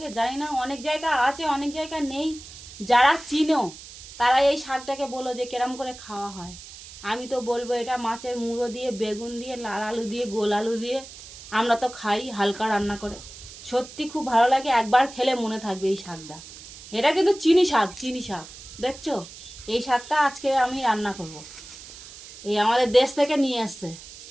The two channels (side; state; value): right; noise; hiss, 16 dB below the sound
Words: জানি না, অনেক জায়গা আছে অনেক জায়গা নেই। যারা চিনো তারা এই শাকটাকে বলো যে কেরম করে খাওয়া হয়। আমি তো বলবো এটা মাছের মুড়ো দিয়ে, বেগুন দিয়ে, লাল আলু দিয়ে, গোল আলু দিয়ে আমরা তো খাই হালকা রান্না করে। সত্যি খুব ভালো লাগে, একবার খেলে মনে থাকবে এই শাকটা। এটা কিন্তু চিনি শাক, চিনি শাক। দেখছো, এই শাকটা আজকে আমি রান্না করব। এই আমাদের দেশ থেকে নিয়ে আসছে,